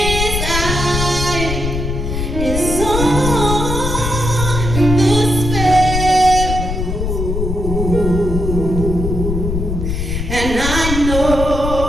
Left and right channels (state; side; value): noise; left; rumble, 2 dB below the sound